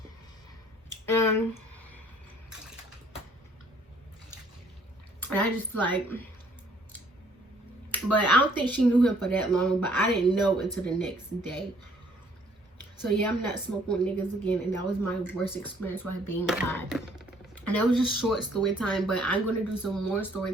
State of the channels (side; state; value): both; normal; correlation 0.61